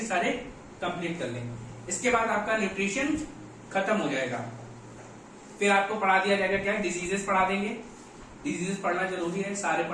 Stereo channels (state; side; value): identical; both; correlation 1.00